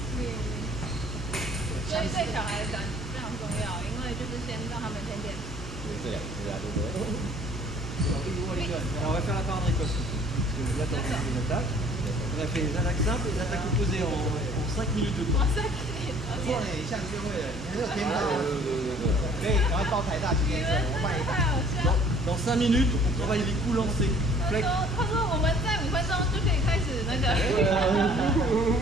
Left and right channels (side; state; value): both; normal; correlation 0.55